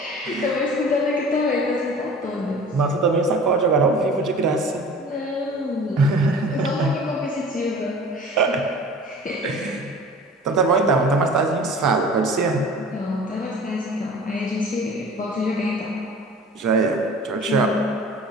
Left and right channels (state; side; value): normal; both; correlation 0.42